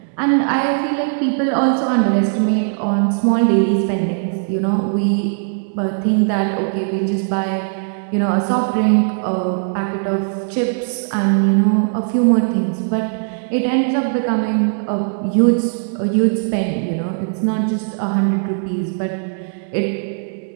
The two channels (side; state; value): left; silent; 67 dB below the other